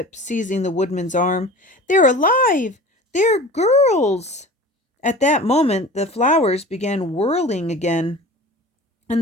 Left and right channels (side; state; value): both; normal; correlation 0.38